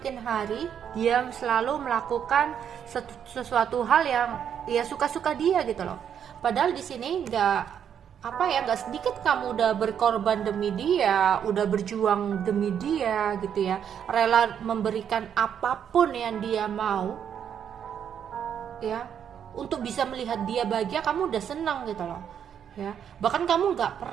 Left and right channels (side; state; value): left; quieter; 8.6 dB